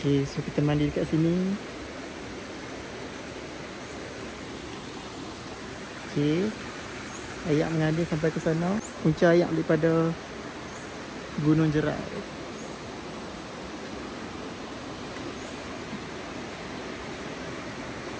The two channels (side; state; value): both; identical; correlation 1.00